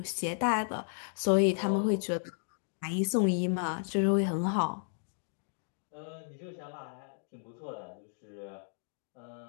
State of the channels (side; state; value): right; silent; digital silence